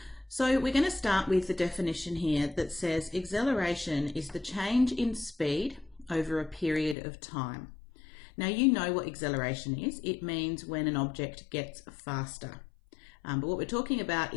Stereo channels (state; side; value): drops out; right; at 7.0 s